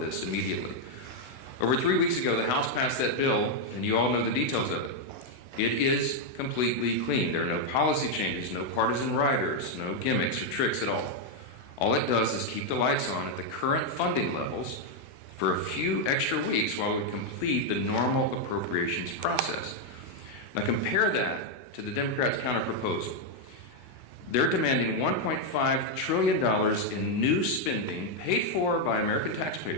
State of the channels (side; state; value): right; late; 16 ms